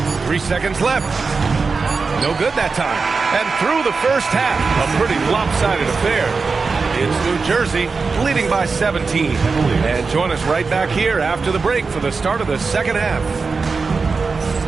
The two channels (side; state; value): left; quieter; 4.5 dB